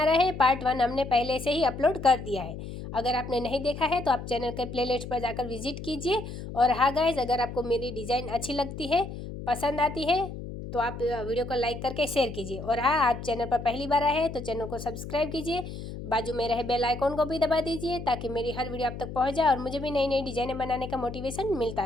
रहे हैं। पार्ट 1 हमने पहले से ही अपलोड कर दिया है। अगर आपने नहीं देखा है तो आप चैनल के प्लेलिस्ट पर जाकर विजिट कीजिए। और हाँ गाइस, अगर आपको मेरी डिज़ाइन अच्छी लगती है, पसंद आती है, तो आप वीडियो को लाइक करके शेयर कीजिए। और हाँ, आप चैनल पर पहली बार आए हैं तो चैनल को सब्सक्राइब कीजिए, बाजू में रहे बेल आइकॉन को भी दबा दीजिए ताकि मेरी हर वीडियो आप तक पहुँच जाए और मुझे भी नई नई डिज़ाइनें बनाने का मोटिवेशन मिलता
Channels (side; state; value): left; noise; hum, 9 dB below the sound